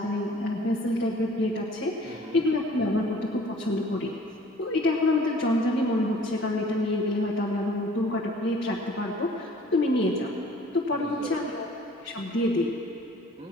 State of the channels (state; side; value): normal; both; correlation 0.52